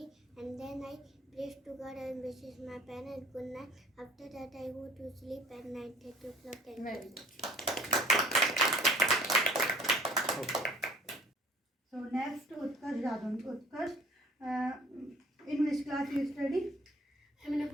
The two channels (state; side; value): normal; both; correlation 0.52